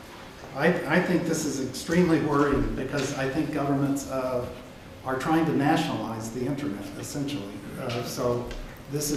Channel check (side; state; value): both; identical; correlation 1.00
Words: I think this is extremely worrying because I think governments are trying to nationalize the internet, essentially. So this